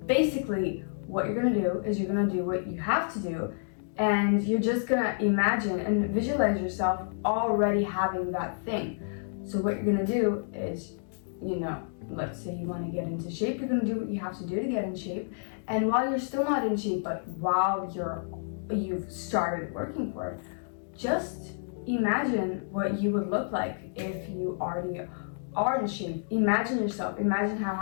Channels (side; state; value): right; silent; digital silence